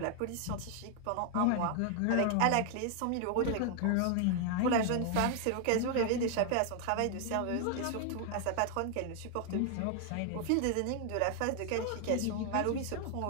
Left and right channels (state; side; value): different; both; correlation 0.00